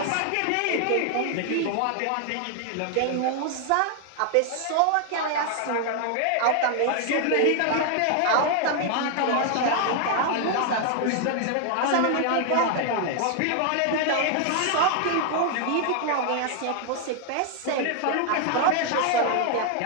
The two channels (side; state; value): both; different; correlation 0.00